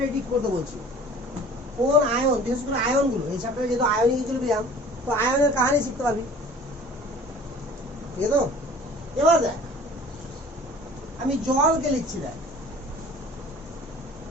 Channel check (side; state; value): both; normal; correlation 0.46